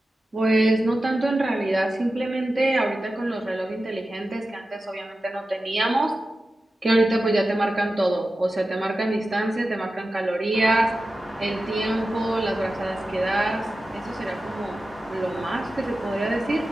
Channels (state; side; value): normal; both; correlation 0.93